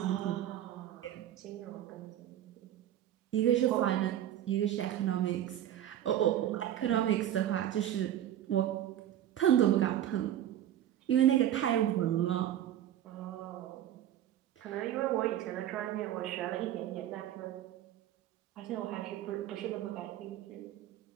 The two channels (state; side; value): quieter; left; 11.6 dB